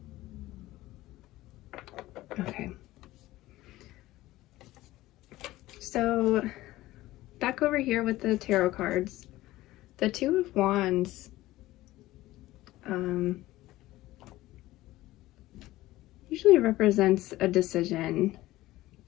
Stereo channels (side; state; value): right; quieter; 17.0 dB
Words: Okay. So back over here with the tarot cards, the Two of Wands usually represents a decision.